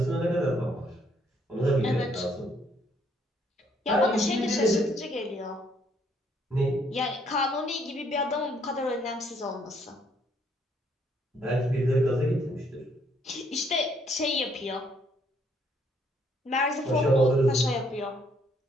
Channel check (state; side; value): normal; both; correlation 0.68